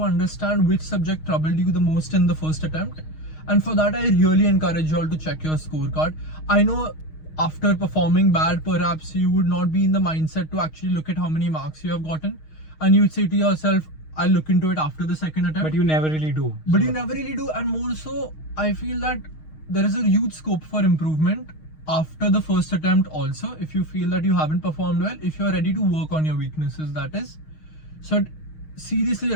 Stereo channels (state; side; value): late; right; 6.4 ms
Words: understand which subject troubled you the most in the first attempt. And for that, I really encourage you all to check your scorecard. I know after performing bad, perhaps you would not be in the mindset to actually look at how many marks you have gotten. And you would say to yourself, I'll look into it after the second attempt. But you never really do. But So- you never really do. And more so, I feel that there is a huge scope for improvement after the first attempt also, if you feel that you haven't performed well, if you're ready to work on your weaknesses, that is. So I'd seriously